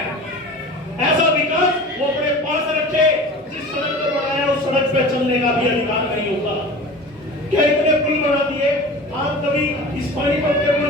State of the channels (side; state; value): both; normal; correlation 0.37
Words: ऐसा विकास वो अपने पास रखे, जिस सड़क पर बनाया उस सड़क पे चलने का भी अधिकार नहीं होगा। क्या इतने पुल बना दिए? आप कभी इस पानीपत के